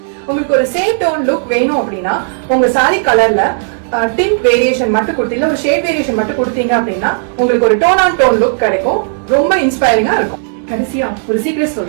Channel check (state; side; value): silent; left; digital silence